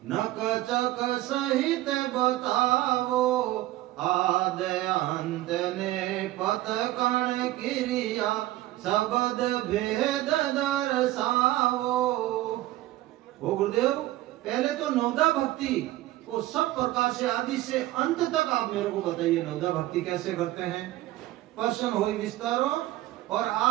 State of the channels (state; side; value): quieter; left; 16.3 dB